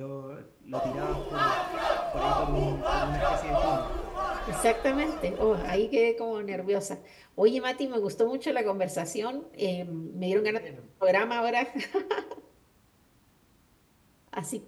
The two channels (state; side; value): identical; both; correlation 1.00